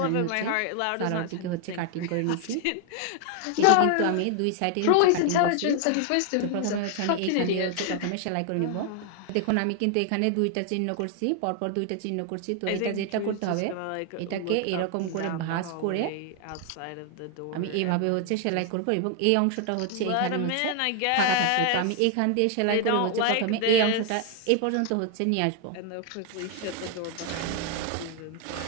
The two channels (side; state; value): both; different; correlation 0.00